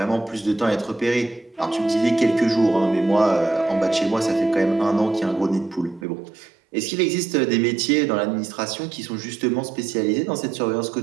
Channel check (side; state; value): left; drops out; at 6.1 s